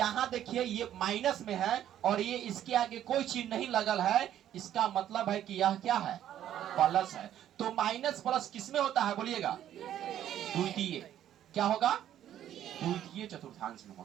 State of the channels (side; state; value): left; quieter; 11.2 dB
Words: देखिए ये माइनस में है और ये इसके आगे कोई चिन्ह नहीं लगल है, इसका मतलब है कि यह क्या है? प्लस है। तो माइनस प्लस किसमें होता है बोलिएगा? द्वितीय। क्या होगा? द्वितीय चतुर्थांश में